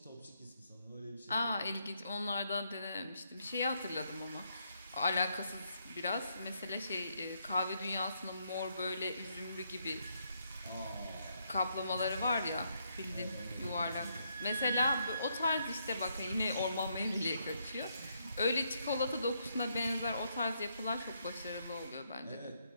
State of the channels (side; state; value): both; inverted; correlation -0.76